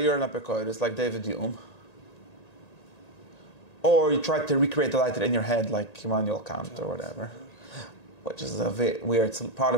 an apikoidus like David Hume, or you try to recreate the lighter in your head like Immanuel Kant or whatever, which is a weird part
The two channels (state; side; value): late; right; 1.9 ms